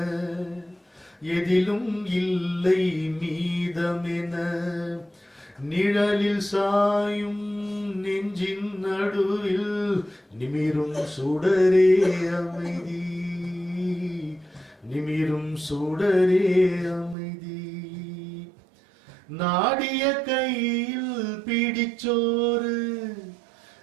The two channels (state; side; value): drops out; left; at 17.2 s